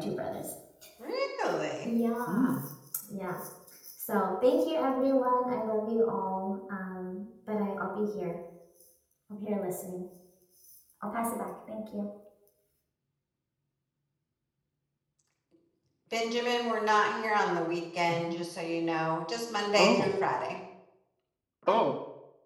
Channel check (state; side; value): identical; both; correlation 1.00